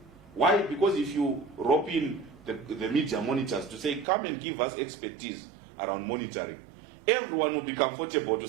Why? Because if you rope in the media monitors to say, come and give us expertise around monitoring, everyone will be comfortable to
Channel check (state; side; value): drops out; left; at 4.0 s